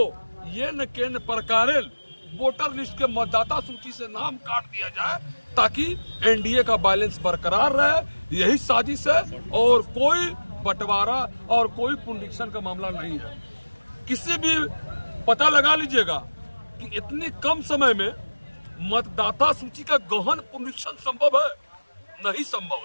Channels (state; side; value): inverted; both; correlation -1.00